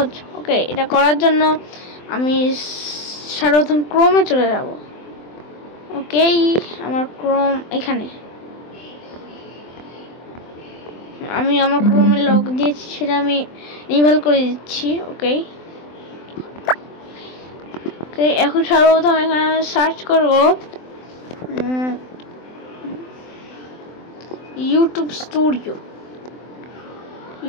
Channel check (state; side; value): late; right; 23 ms